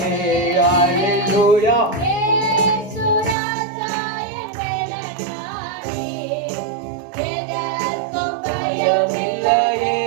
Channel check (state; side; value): drops out; left; at 3.4 s